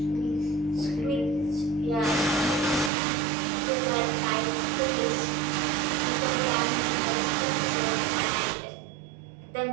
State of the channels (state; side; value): drops out; left; at 2.9 s